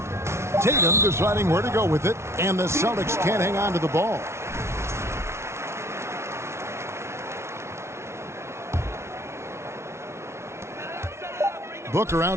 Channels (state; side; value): late; left; 0.13 ms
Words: Tatum deciding where to go with it, and the Celtics can't hang on to the ball. Booker